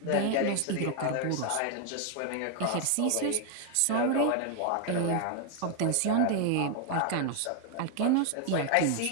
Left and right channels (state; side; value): different; both; correlation 0.00